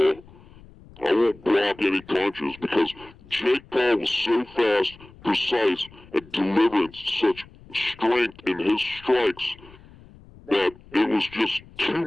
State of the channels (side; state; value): left; noise; rumble, 23 dB below the sound